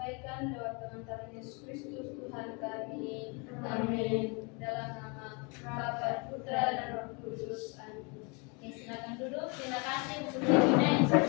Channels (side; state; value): right; quieter; 31.8 dB